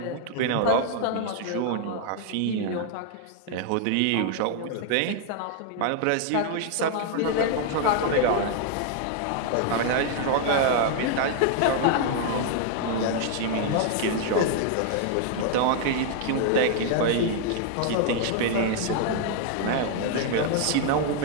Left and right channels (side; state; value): both; different; correlation 0.00